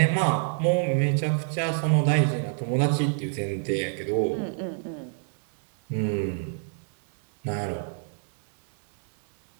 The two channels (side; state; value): left; silent; 61 dB below the other